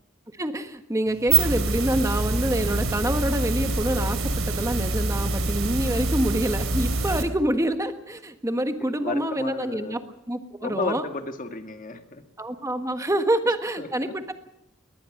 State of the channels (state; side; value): normal; both; correlation 0.71